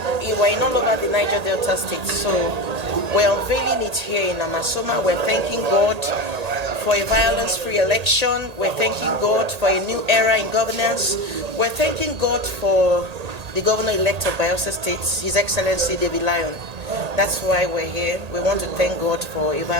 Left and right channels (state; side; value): late; left; 1.8 ms